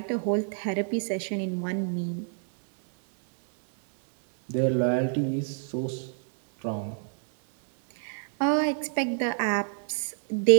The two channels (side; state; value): left; silent; 60 dB below the other